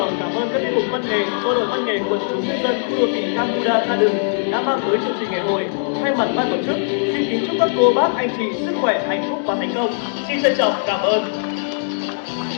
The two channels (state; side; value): silent; right; digital silence